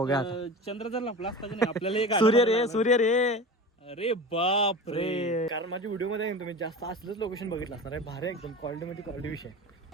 आता. चंद्र जर लपला असता की नाही आपल्याला सूर्य रे सूर्य रे अरे बाप रे. कारण माझ्या व्हिडिओ मध्ये तुम्ही जास्त असलंच लोकेशन बघितलं असणार आहे. भारी एकदम क्वालिटी मध्ये क्वालिटी विषय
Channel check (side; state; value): both; normal; correlation 0.32